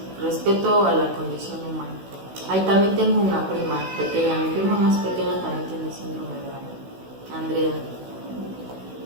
respeto a la condición humana. Ahí también tengo una prima pequeña, mi prima más pequeña también tiene síndrome de Down, Andrea.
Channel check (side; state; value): left; late; 16 ms